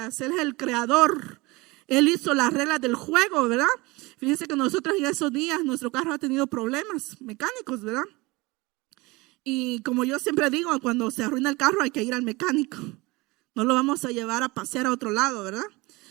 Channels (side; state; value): left; quieter; 23.2 dB